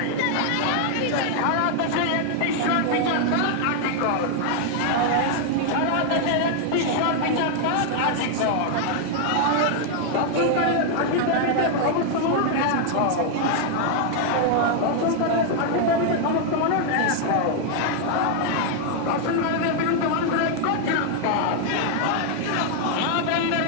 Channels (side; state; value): both; different; correlation 0.00